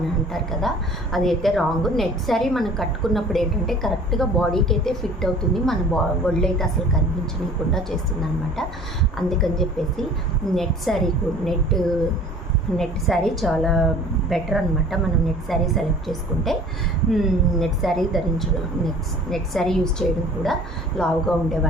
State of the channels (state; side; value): normal; both; correlation 0.47